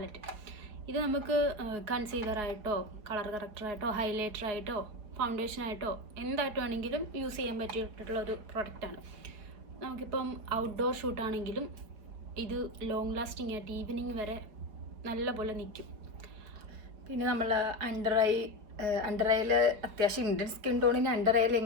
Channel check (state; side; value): late; left; 4.7 ms